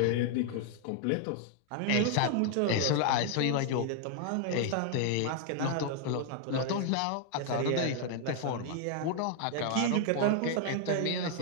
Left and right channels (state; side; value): different; both; correlation 0.00